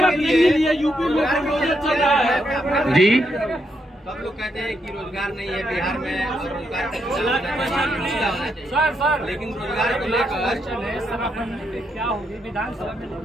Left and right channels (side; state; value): both; normal; correlation 0.79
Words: जी सब लोग कहते हैं कि रोजगार नहीं है बिहार में और रोजगार लेकिन रोजगार को लेकर क्या होगी विधानसभा में